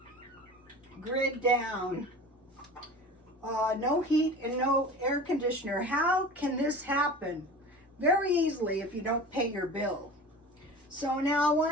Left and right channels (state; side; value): normal; both; correlation 0.37